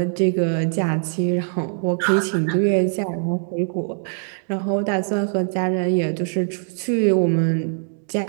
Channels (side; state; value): left; silent; digital silence